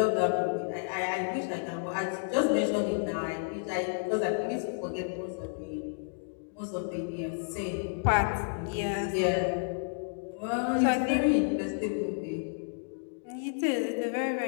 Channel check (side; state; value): right; silent; digital silence